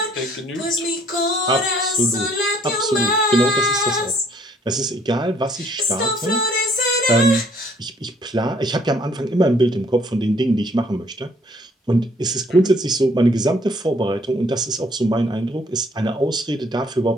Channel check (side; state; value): both; normal; correlation 0.63